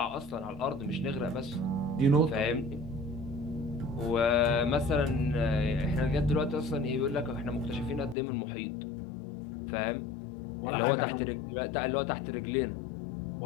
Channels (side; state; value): right; drops out; at 8.2 s